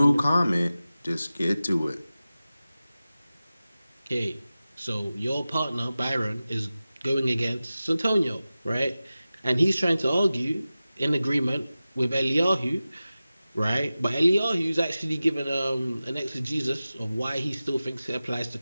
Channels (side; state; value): both; inverted; correlation -0.95